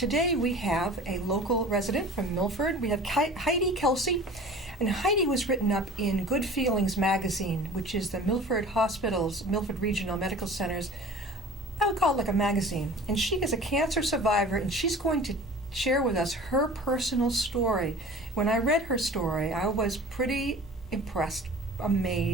we have a local resident from Milford. We have Heidi Kelsey, and Heidi was written up in Good Feelings magazine, which is the Milford Hospital's, Milford Regional Medical Center's, I would call it like a magazine. And she is a cancer survivor, and she's going to share with us her personal story. When I read her story, I was pretty impressed,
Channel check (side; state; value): both; normal; correlation 0.42